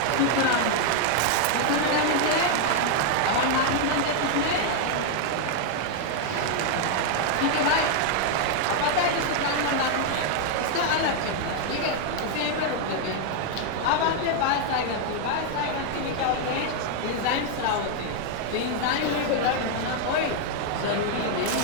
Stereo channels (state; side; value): different; both; correlation 0.00